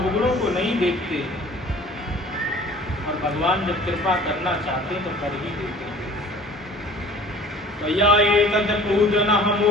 को नहीं देखते, और भगवान जब कृपा करना चाहते तो कर ही देते। त्वया एतद् पूजनः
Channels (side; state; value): both; normal; correlation 0.48